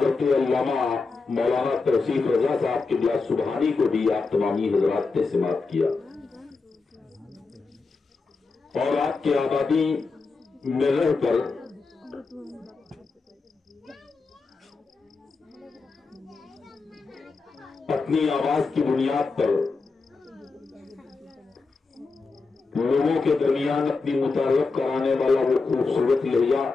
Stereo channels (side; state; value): right; quieter; 4.2 dB